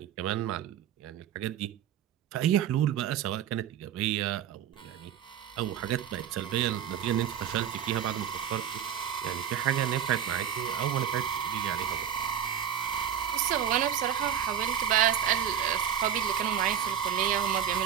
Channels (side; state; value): left; quieter; 9.5 dB